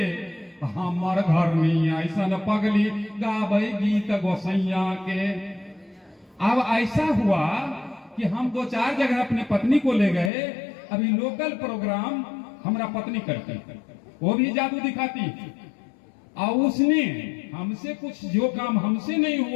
हमर घर नहीं ऐसन पगली, गाबै गीत गोसैया के। अब ऐसा हुआ कि हम 2-4 जगह अपनी पत्नी को ले गए। अभी लोकल प्रोग्राम हमारा पत्नी करती, वो भी जादू दिखाती, और उसने हमसे कुछ जो काम हमसे नहीं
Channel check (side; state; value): right; drops out; at 10.3 s